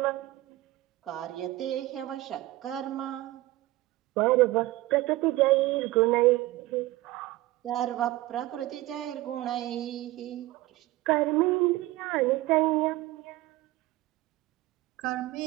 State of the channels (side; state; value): left; quieter; 17.8 dB